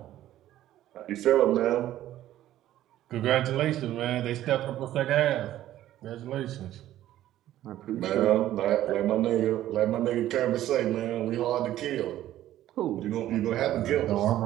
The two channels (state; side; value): quieter; left; 13.3 dB